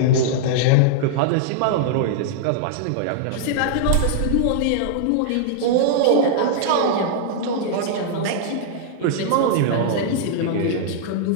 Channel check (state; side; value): different; both; correlation -0.01